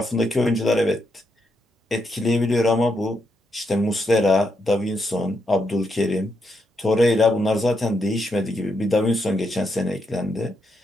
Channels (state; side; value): normal; both; correlation 0.81